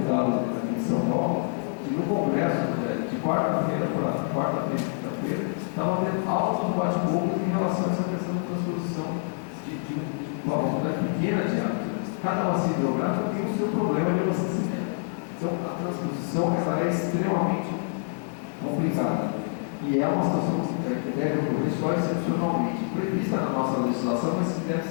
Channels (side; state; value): right; silent; 60 dB below the other